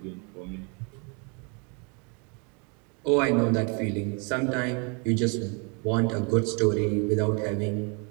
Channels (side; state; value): left; quieter; 33.9 dB